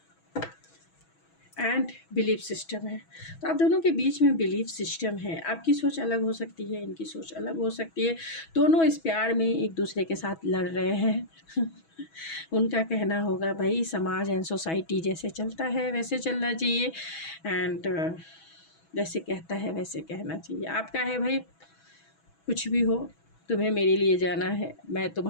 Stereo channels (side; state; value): right; late; 6.1 ms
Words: एंड बिलीफ सिस्टम है, तो आप दोनों के बीच में बिलीफ सिस्टम है। आपकी सोच अलग हो सकती है, इनकी सोच अलग हो सकती है, दोनों इस प्यार में एक दूसरे के साथ लड़ रहे हैं। उनका कहना होगा भाई समाज एंड सोसाइटी जैसे चलता है वैसे चलना चाहिए, एंड जैसे कहता है वैसे कहना चाहिए। आपका है भाई कुछ भी हो, तुम्हें मेरे लिए जाना है, मैं